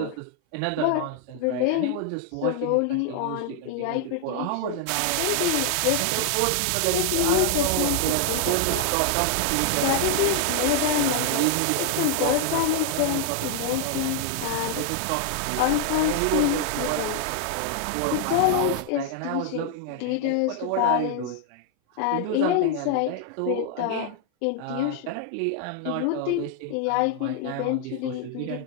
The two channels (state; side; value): different; both; correlation 0.00